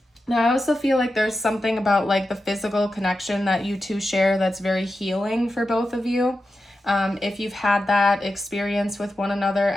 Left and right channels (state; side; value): normal; both; correlation 0.90